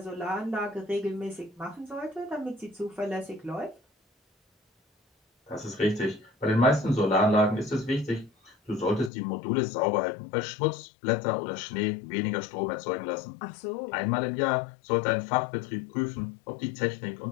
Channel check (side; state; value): right; drops out; at 9.1 s